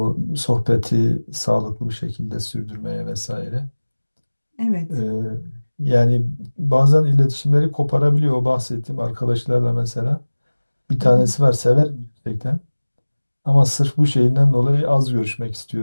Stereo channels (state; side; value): inverted; both; correlation -1.00